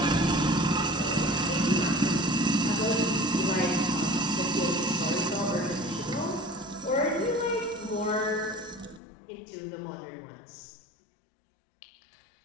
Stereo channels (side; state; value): right; drops out; at 9.0 s